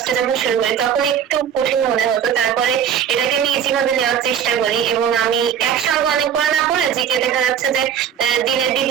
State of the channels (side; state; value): left; quieter; 8.5 dB